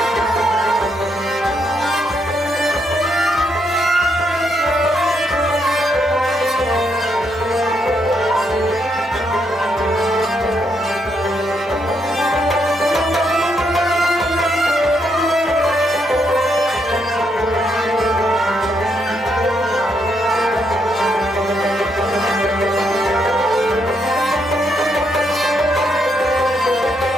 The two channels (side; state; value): both; normal; correlation 0.77